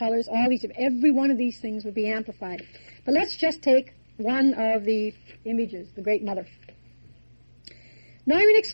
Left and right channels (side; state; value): both; inverted; correlation -1.00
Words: Every one of these things would be amplified. But let's just take one of the images, the Great Mother. Neumann